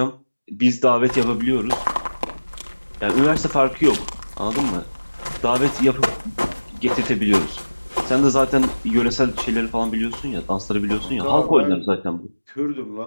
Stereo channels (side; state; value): both; inverted; correlation -1.00